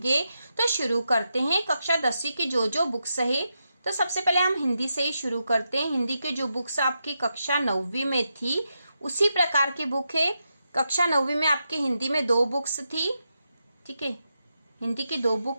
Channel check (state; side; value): inverted; both; correlation -0.86